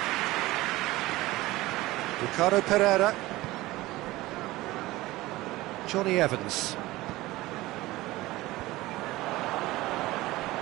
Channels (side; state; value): left; quieter; 18.6 dB